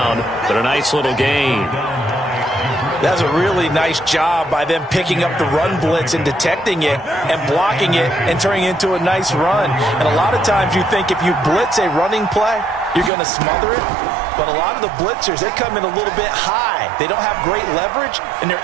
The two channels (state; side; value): drops out; left; at 13.1 s